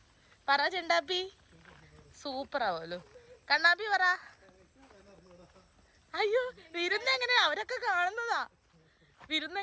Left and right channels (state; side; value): identical; both; correlation 1.00